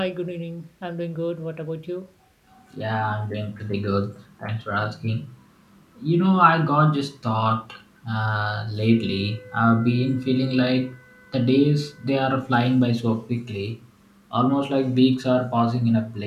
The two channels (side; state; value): both; identical; correlation 1.00